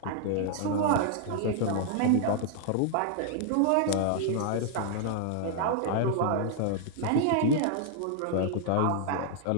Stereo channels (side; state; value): both; different; correlation -0.01